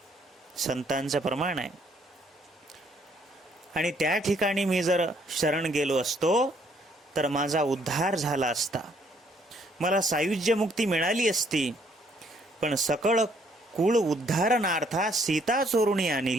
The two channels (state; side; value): normal; both; correlation 0.66